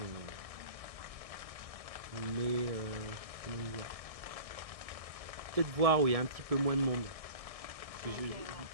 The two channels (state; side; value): late; left; 1.6 ms